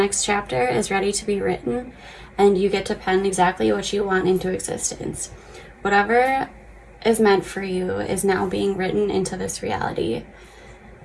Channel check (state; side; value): identical; both; correlation 1.00